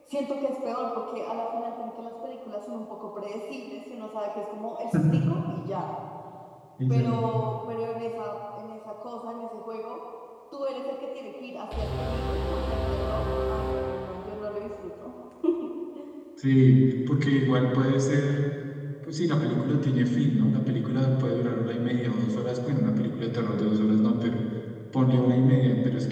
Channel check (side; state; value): both; identical; correlation 1.00